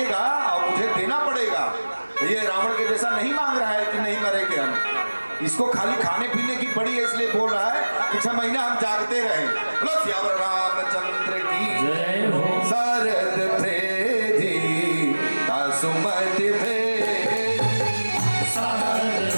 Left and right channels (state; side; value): inverted; both; correlation -1.00